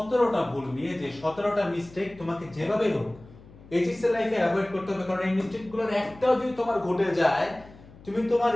ভুল নিয়ে, যে 17টা মিস্টেক তোমাকে যেভাবে হোক এইচএসসি লাইফে অ্যাভয়েড করতে হবে। কারণ এই মিস্টেকগুলোর একটাও যদি তোমার ঘটে যায়, তুমি তোমার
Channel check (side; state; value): left; noise; hum, 21 dB below the sound